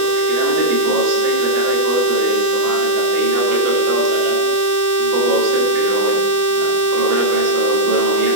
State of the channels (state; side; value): late; left; 25 ms